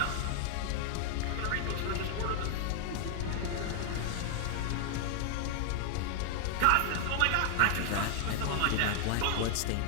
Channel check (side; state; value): both; different; correlation 0.00